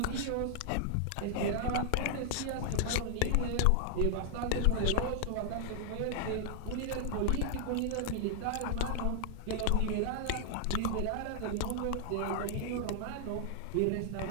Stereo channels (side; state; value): both; different; correlation 0.00